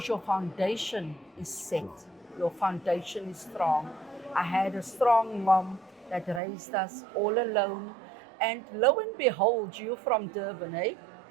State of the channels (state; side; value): drops out; left; at 6.4 s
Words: your foundation is set, your foundation is strong. I had a strong mom that raised us all alone, and lo and behold, you from Durban, eh?